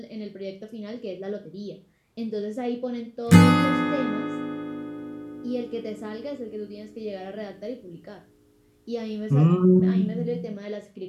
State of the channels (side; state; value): both; identical; correlation 1.00